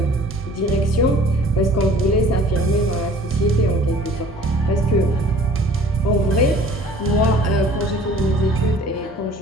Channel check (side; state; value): both; normal; correlation 0.50